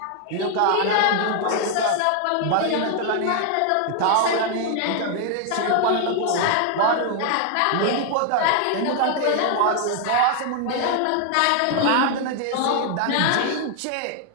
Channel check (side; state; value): both; different; correlation 0.00